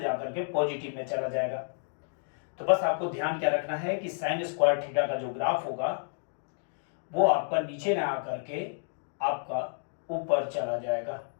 के पॉजिटिव में चला जाएगा। तो बस आपको ध्यान क्या रखना है कि साइन स्क्वायर थीटा का जो ग्राफ होगा वो आपका नीचे ना आकर के आपका ऊपर चला जाएगा।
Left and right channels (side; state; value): right; silent; digital silence